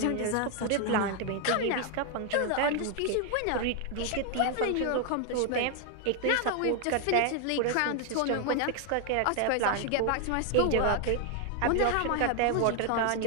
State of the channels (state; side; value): different; both; correlation 0.00